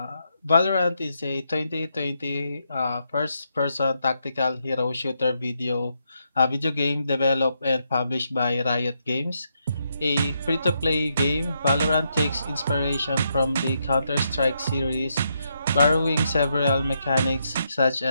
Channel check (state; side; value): inverted; both; correlation -0.80